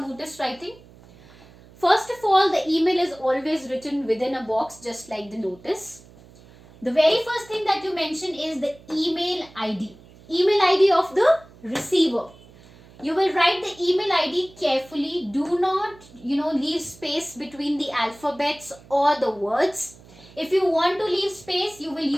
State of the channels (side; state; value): right; noise; hum, 24 dB below the sound